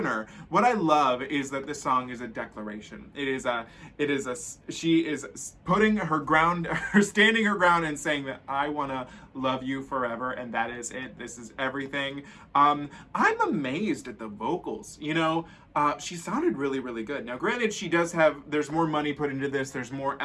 What I love is that this song is a declaration. She is putting her ground, standing her ground and saying that I want to love you forever, and that is it. This is everything. I'm amazed at the vocals. You know, she sounded really, really good. Now, granted, there's more money put into this. There's more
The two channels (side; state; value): both; identical; correlation 1.00